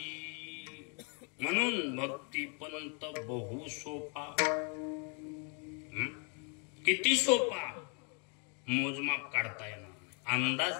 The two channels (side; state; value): right; quieter; 37.7 dB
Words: म्हणून भक्ती पंत बहु सोपा. किती सोपा, मोजमाप काढता येणार नाही, अंदाज